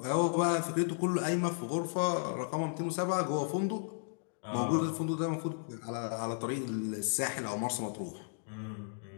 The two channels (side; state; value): right; silent; digital silence